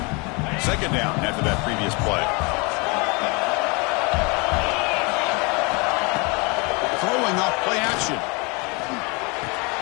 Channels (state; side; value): quieter; right; 29.6 dB